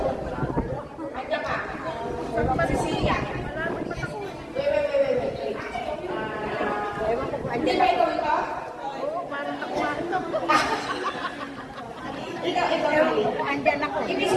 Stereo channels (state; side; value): identical; both; correlation 1.00